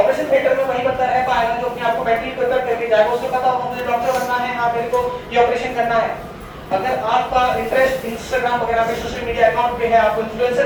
थिएटर में वही बंदा रह पाएगा जो अपने आप को मेंटली प्रिपेयर करके जाएगा, उसको पता होगा मुझे डॉक्टर बनना है, हाँ मेरे को ये ऑपरेशन करना है। अगर आपका इंटरेस्ट इंस्टाग्राम वगैरह पे, सोशल मीडिया अकाउंट पे है, आपको इन्फ्लुएंसर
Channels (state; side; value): identical; both; correlation 1.00